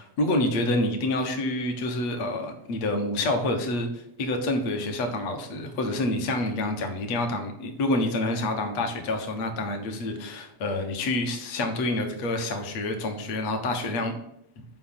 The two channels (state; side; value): late; right; 8.3 ms